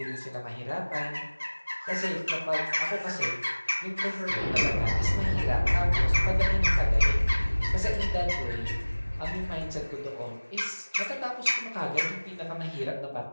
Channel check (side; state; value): both; inverted; correlation -1.00